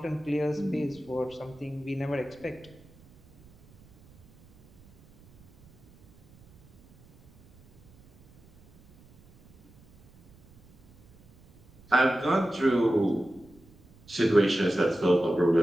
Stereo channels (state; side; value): noise; right; rumble, 27 dB below the sound